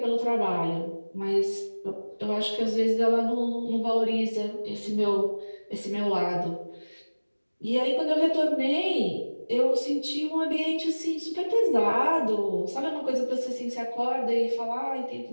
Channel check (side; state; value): both; inverted; correlation -1.00